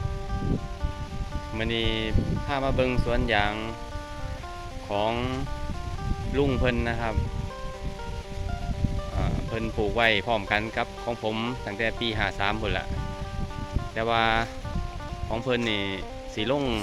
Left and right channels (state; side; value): identical; both; correlation 1.00